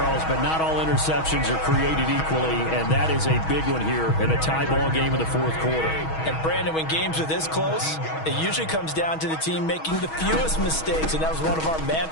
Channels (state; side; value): late; right; 6.3 ms